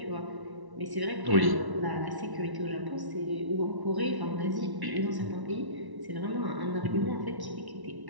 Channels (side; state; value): left; late; 1.1 ms